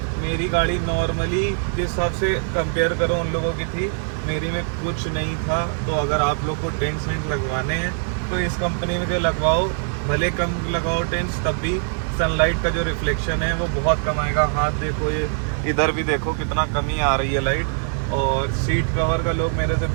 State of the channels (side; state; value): left; silent; 62 dB below the other